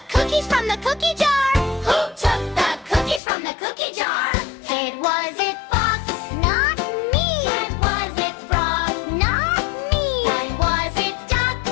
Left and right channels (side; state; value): right; drops out; at 3.2 s